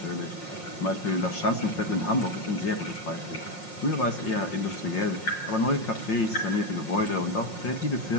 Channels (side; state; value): right; late; 5.6 ms